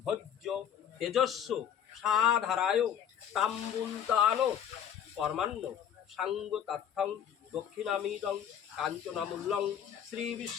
ভোজ্য তেজস্ব সাধারায় তাম্বুলতান কর্মাণ্য সাঙ্গ তথ্যং দক্ষিণামিদং কাঞ্চনামূল্যং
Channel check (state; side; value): quieter; right; 9.2 dB